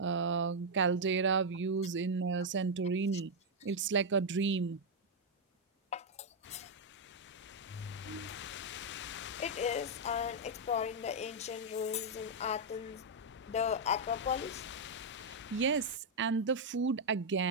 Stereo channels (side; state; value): both; normal; correlation -0.02